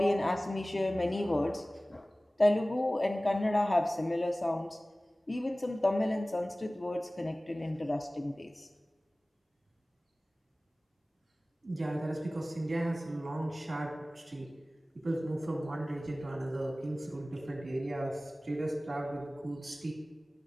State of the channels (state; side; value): normal; both; correlation 0.98